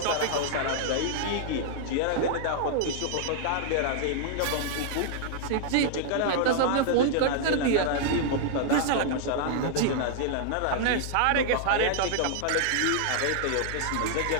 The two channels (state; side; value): different; both; correlation -0.01